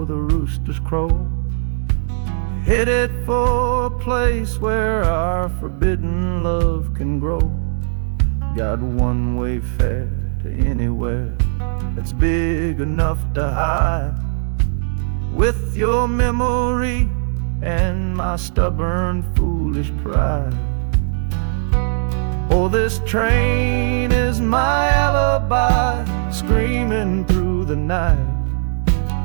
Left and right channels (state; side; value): silent; left; digital silence